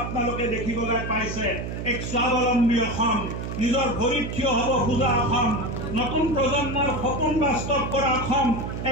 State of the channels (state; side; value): noise; right; hum, 6 dB below the sound